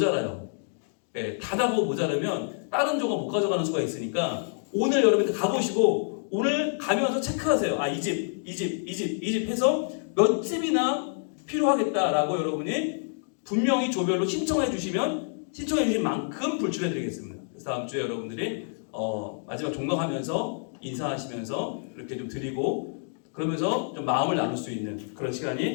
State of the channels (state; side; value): silent; right; digital silence